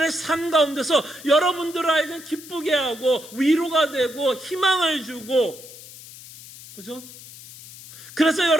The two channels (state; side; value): noise; left; hiss, 17 dB below the sound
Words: 삶 가운데서 여러분들을 하여금 기쁘게 하고 위로가 되고 희망을 주고 그죠? 그래서